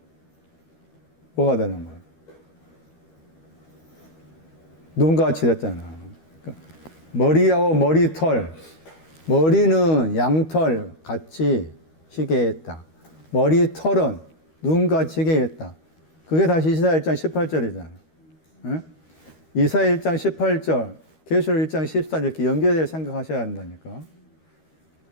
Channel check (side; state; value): right; late; 13 ms